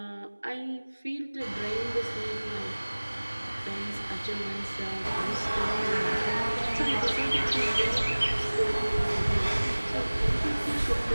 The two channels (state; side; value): inverted; both; correlation -1.00